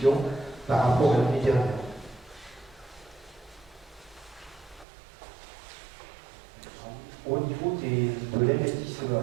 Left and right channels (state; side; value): drops out; left; at 4.9 s